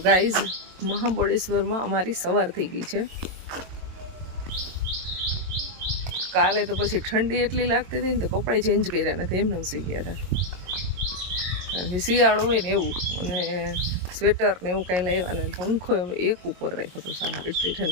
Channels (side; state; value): left; late; 22 ms